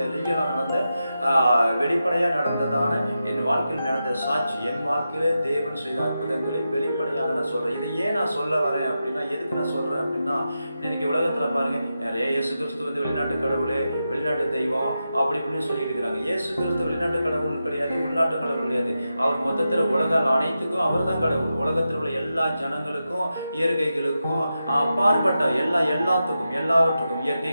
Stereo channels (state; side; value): inverted; both; correlation -0.89